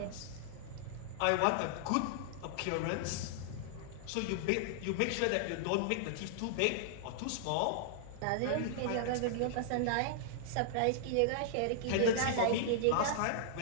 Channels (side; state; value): both; different; correlation -0.01